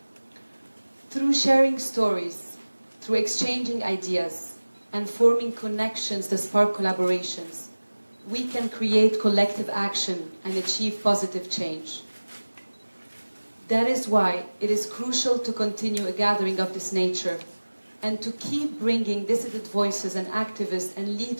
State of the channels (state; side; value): inverted; both; correlation -1.00